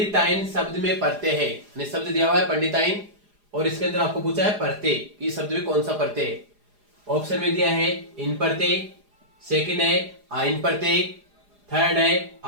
शब्द में प्रत्यय है, यानी शब्द दिया हुआ है पंडिताइन और इसके अंदर आपको पूछा है प्रत्यय, इस शब्द में कौन सा प्रत्यय है। ऑप्शन में दिया है इन प्रत्यय, सेकंड है आइन प्रत्यय, थर्ड है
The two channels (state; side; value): late; left; 4.9 ms